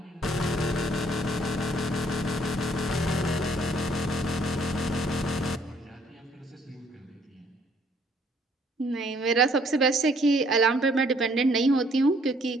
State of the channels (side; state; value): both; normal; correlation 0.64